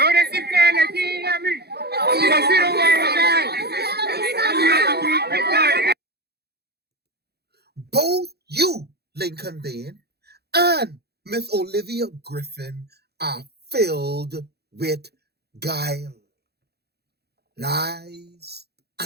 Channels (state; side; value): late; left; 0.47 ms